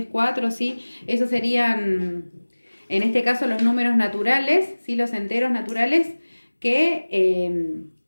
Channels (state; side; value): inverted; both; correlation -1.00